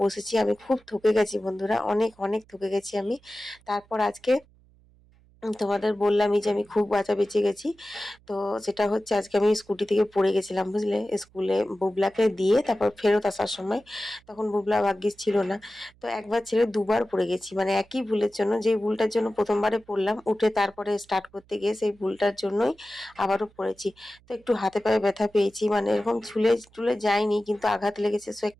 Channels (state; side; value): noise; right; hum, 30 dB below the sound